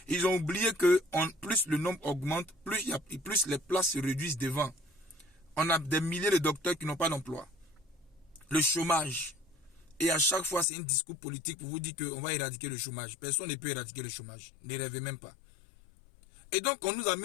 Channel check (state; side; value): drops out; right; at 10.7 s